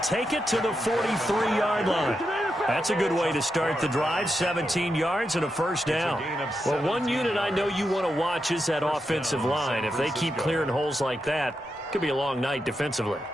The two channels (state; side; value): normal; both; correlation 0.86